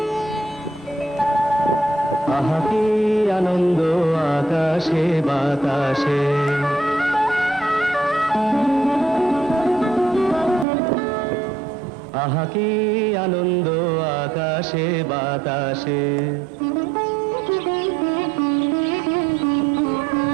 আহা কি আনন্দ আকাশে বাতাসে। আহা কি আনন্দ আকাশে বাতাসে।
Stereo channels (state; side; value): drops out; left; at 10.7 s